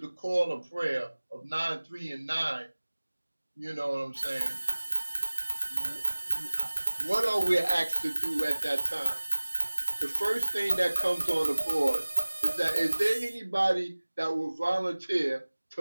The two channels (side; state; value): both; inverted; correlation -1.00